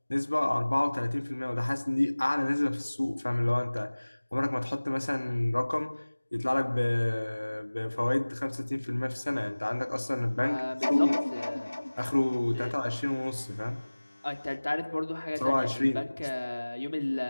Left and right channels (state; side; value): inverted; both; correlation -1.00